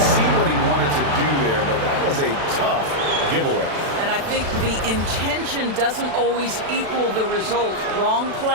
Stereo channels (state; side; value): late; left; 36 ms